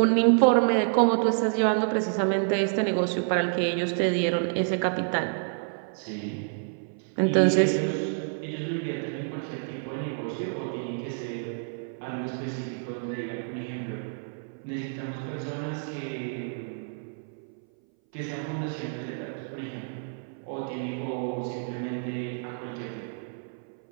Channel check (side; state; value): left; silent; 59 dB below the other